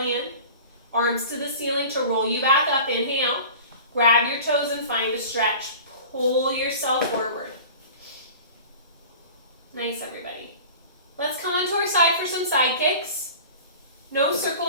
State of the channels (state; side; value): inverted; both; correlation -0.39